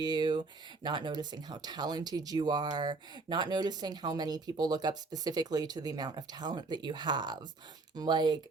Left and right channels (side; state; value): left; quieter; 3.8 dB